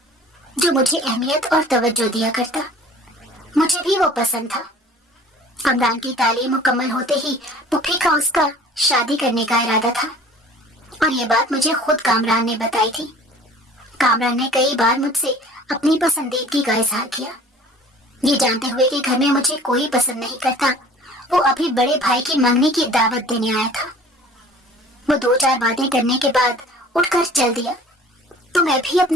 جو مجھے اہمیت اور توجہ دیا کرتا۔ مجھے بھی وہ پسند تھا۔ کامران کی تعلیم مکمل ہوتے ہی پھوپھی کا اس کا شادی کرنے کا ارادہ تھا، اور یہ بات مجھے خود کامران نے بتائی تھی۔ کامران نے کئی بار مجھ سے اپنی پسندیدگی کا اظہار کیا۔ یہ جانتے ہوئے کہ گھر میں مجھے کوئی پسند نہیں کرتا، وہ ابھی بڑے بھائی کی منگنی کی دعوت دینے آیا تھا۔ وہ دو چار باتیں کرنے کے بعد اٹھ کر چل دیا تو میں بھی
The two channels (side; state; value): both; normal; correlation 0.47